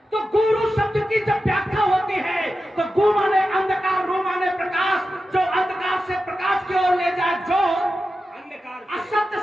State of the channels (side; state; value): both; normal; correlation 0.92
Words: तो गुरु शब्द की जब व्याख्या होती है तो गु माने अंधकार, रू माने प्रकाश, जो अंधकार से प्रकाश की ओर ले जाए, जो असत्य